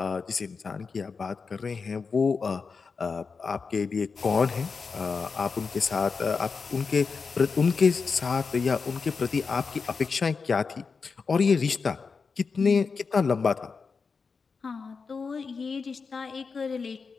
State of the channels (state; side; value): quieter; right; 5.0 dB